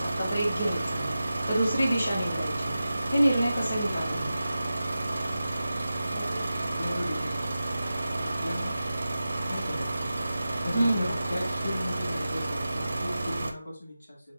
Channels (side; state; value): both; inverted; correlation -0.94